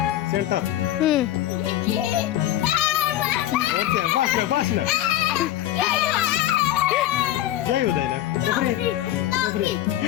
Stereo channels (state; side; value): quieter; right; 13.5 dB